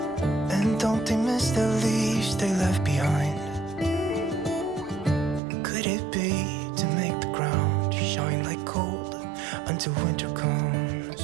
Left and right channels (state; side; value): drops out; left; at 5.4 s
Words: And don't they miss the leaves they left behind? Could it be to make the ground shine like gold until winter comes?